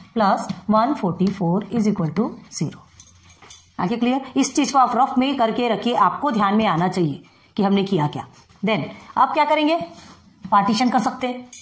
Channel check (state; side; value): identical; both; correlation 1.00